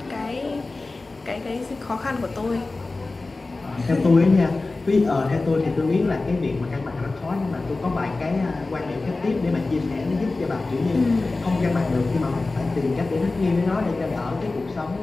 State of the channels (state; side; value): quieter; right; 3.4 dB